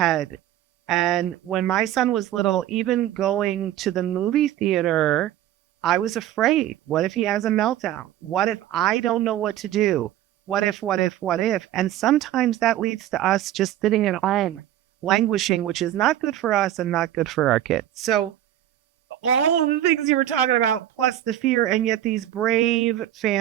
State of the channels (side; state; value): left; quieter; 12.5 dB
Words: And when my son was little, even going to the movie theater, I was afraid. What if he has a meltdown? What if I don't know what to do? What if? And sometimes that leads to us just sitting at home, languishing, which is not good for us and not good for our kids. So all of the things you were talking about, plus the fear, and yet these brave